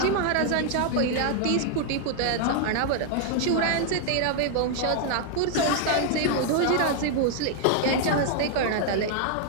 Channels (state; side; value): different; both; correlation 0.00